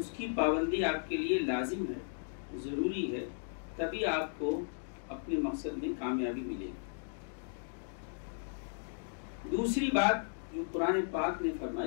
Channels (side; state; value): right; silent; digital silence